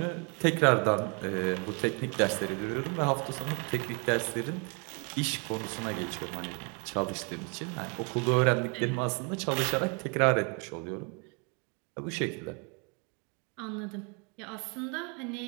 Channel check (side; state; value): left; quieter; 34.5 dB